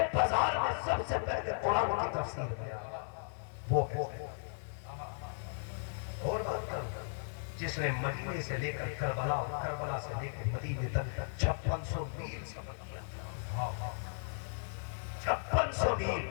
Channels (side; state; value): right; silent; digital silence